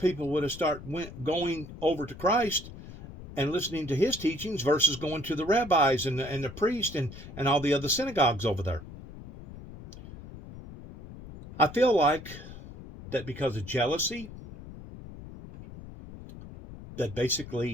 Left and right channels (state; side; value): noise; left; rumble, 14 dB below the sound